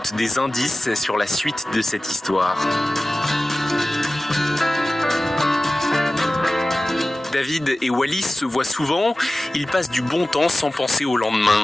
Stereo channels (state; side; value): normal; both; correlation 0.96